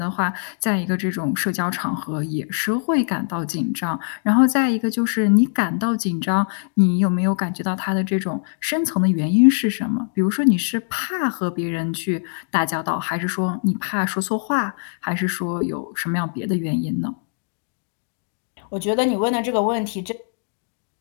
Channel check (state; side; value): silent; right; 64 dB below the other